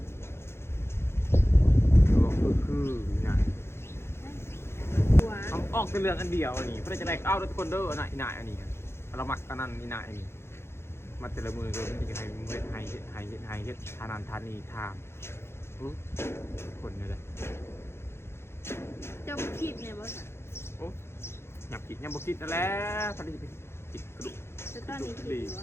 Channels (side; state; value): right; late; 0.12 ms